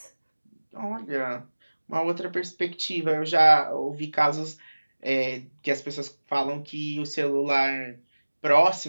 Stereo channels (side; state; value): both; inverted; correlation -1.00